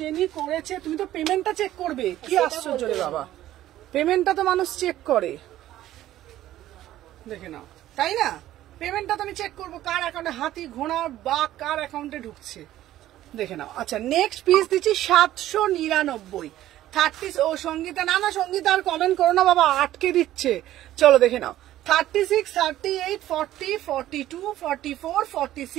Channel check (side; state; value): left; quieter; 13.8 dB